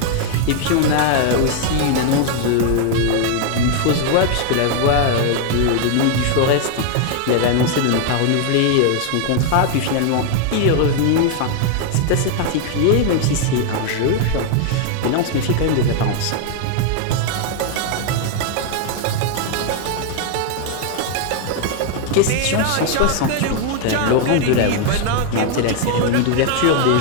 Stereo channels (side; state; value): both; different; correlation 0.00